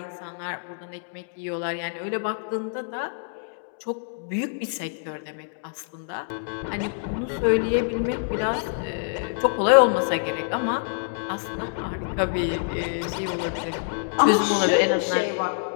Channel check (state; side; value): silent; right; digital silence